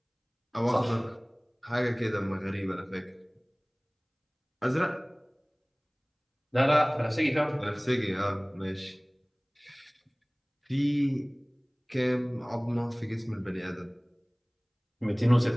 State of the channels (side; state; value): both; identical; correlation 1.00